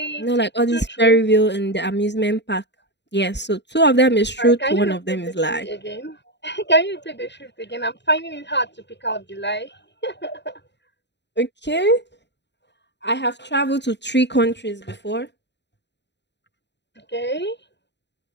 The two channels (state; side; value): late; right; 0.51 ms